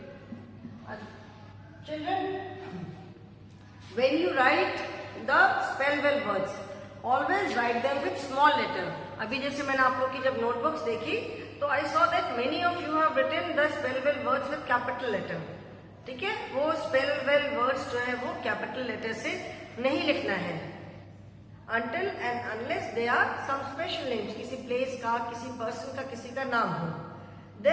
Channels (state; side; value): identical; both; correlation 1.00